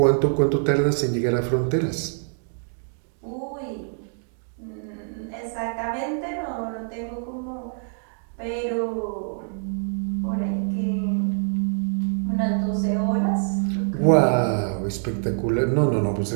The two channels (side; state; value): left; silent; digital silence